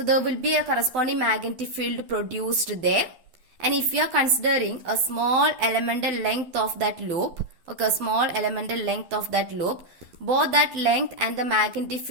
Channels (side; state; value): left; late; 12 ms